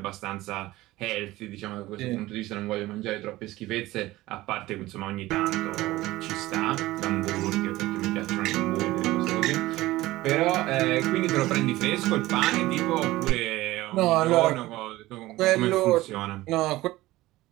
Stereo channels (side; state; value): left; quieter; 17.7 dB